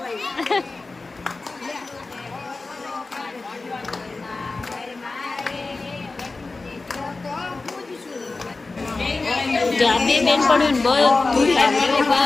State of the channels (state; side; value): quieter; right; 3.6 dB